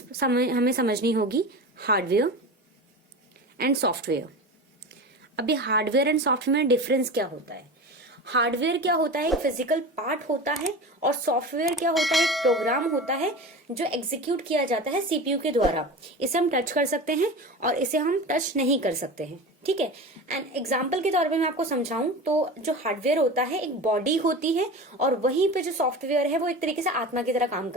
हमें समझनी होगी, हार्डवेयर एंड सॉफ्टवेयर। अब ये हार्डवेयर एंड सॉफ्टवेयर में डिफरेंस क्या होता है। हार्डवेयर क्या होता है, एक फिजिकल पार्ट होता है, और सॉफ्टवेयर क्या होता है, एक प्रोग्राम होता है जो एग्जीक्यूट किया जाता है सीपीयू के द्वारा। इसे हम टच कर सकते हैं और इसे हम टच नहीं कर सकते हैं, ठीक है। एंड एग्जाम्पल के तौर पे मैं आपको समझाऊं तो जो हार्डवेयर होता है एक बॉडी होती है, और वहीं पे जो सॉफ्टवेयर है वो एक तरीके से आत्मा की तरह काम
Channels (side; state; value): both; normal; correlation 0.30